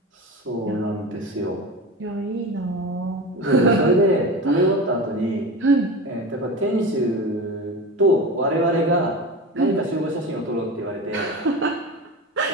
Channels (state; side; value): normal; both; correlation 0.27